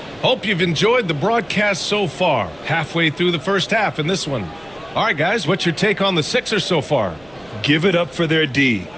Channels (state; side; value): noise; right; hum, 27 dB below the sound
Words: Hope you've enjoyed the broadcast so far. Halfway through the first half in this one. All right, guys, what's your take on the Sixers so far? Give it up for their D.